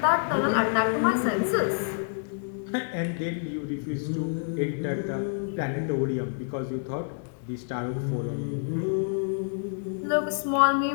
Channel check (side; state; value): right; silent; digital silence